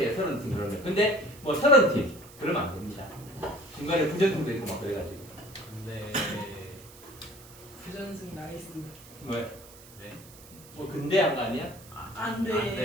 30팀 그러면. 근데 뭐 30팀 그러면 안 됩니다. 중간에 부전승도 있고 막 그래가지고. 네. 부전승 나이스. 왜? 네. 뭐 근대한 거 아니야? 안 돼. 안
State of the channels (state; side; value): noise; right; hiss, 20 dB below the sound